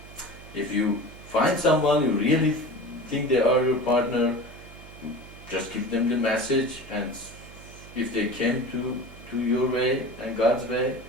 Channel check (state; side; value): noise; right; hum, 18 dB below the sound